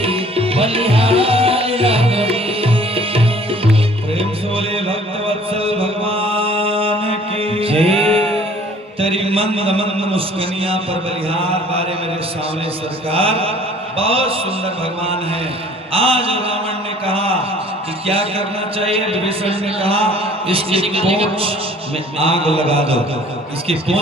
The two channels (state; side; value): normal; both; correlation 0.53